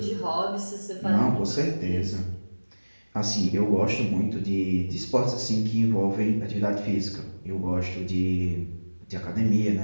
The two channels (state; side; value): inverted; both; correlation -1.00